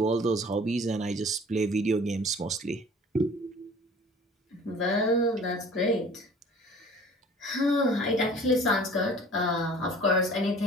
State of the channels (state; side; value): normal; both; correlation 0.47